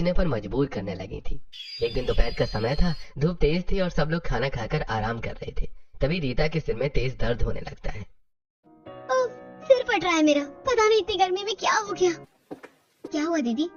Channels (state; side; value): identical; both; correlation 1.00